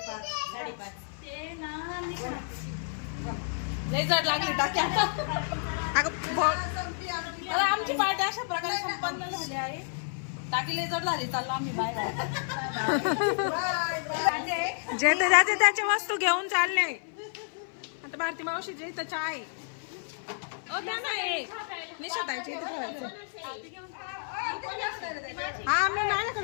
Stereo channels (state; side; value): silent; right; 55 dB below the other